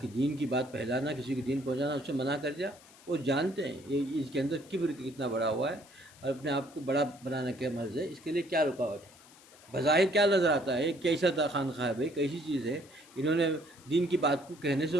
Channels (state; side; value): noise; left; hiss, 24 dB below the sound